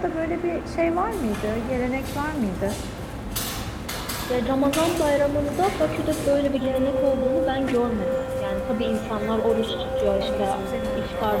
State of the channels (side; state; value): both; identical; correlation 1.00